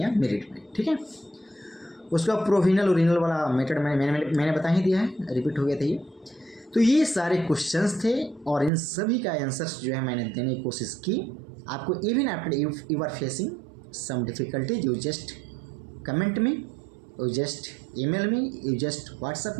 है मेरिट में। ठीक है, उसका प्रोविजनल ओरिजिनल वाला मेथड मैंने बता ही दिया है, रिपीट हो गया था ये। तो ये सारे क्वेश्चंस थे और इन सभी का आंसर्स जो है मैंने देने की कोशिश की आपको। Even after you are facing some difficulties, you just comment में, you just email me, you just WhatsApp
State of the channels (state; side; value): drops out; left; at 8.7 s